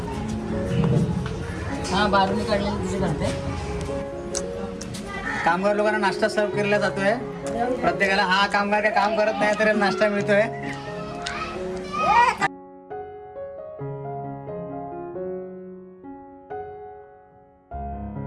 हा बारूनी काढलेली तुझी करते. कामगार लोकांना नाश्ता सर्व केला जातोय. प्रत्येकाला हा कामगार काय काम करत नाही तर नाश्ता मिळतोय.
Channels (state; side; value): identical; both; correlation 1.00